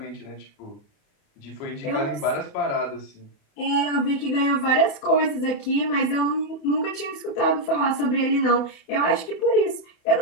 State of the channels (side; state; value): right; late; 28 ms